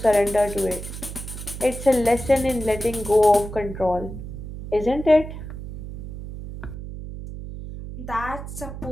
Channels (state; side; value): noise; right; hum, 10 dB below the sound